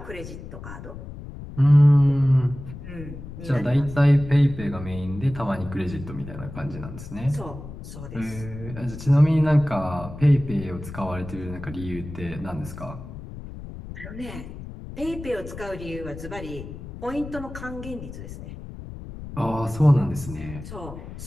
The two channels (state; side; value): noise; left; rumble, 12 dB below the sound